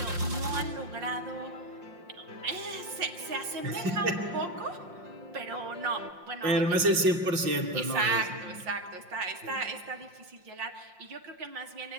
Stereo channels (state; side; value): late; left; 5.6 ms